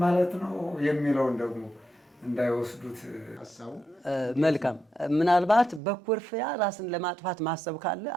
ማለት ነው የሚለውን ደግሞ እንዳይወስዱት ሀሳቡ። መልካም። ምናልባት በኩርፊያ ራስን ለማጥፋት ማሰብ ካለ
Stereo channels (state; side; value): drops out; left; at 5.8 s